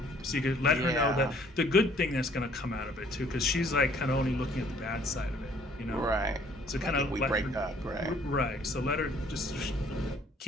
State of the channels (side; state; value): both; normal; correlation 0.59